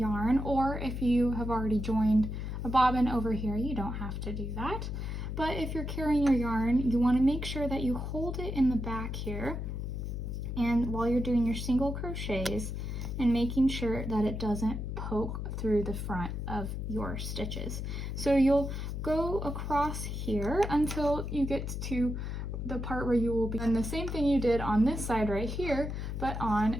or if you have already joined a bobbin over here, you don't have to do that. But if you're carrying your yarn, you want to make sure that you hold it in the back here, and while you're doing your single crochets, and making sure that it doesn't poke through the front of your stitches. So you'll go across here until you get to the part where you will be doing the same thing you did on this side right here, but on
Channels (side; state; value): left; noise; hum, 4 dB below the sound